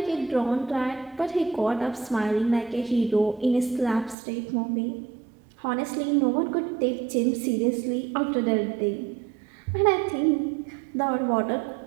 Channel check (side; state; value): left; drops out; at 4.2 s